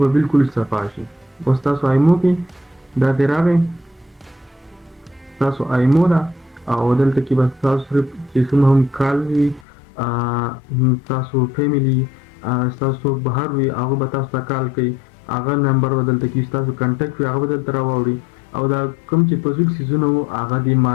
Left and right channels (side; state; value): right; drops out; at 9.7 s